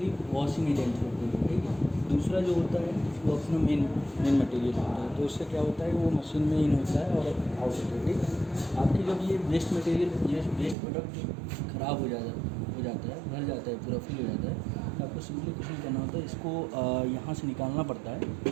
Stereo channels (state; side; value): drops out; left; at 10.8 s